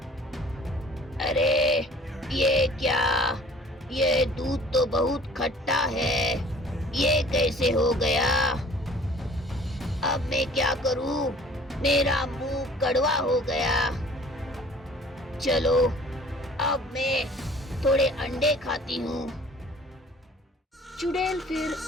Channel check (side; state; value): both; normal; correlation 0.50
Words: अरे ये क्या? ये दूध तो बहुत खट्टा है। ये कैसे हो गया? अब मैं क्या करूं? मेरा मुंह कड़वा हो गया। चलो अब मैं थोड़े अंडे खाती हूँ। चुड़ैल फिर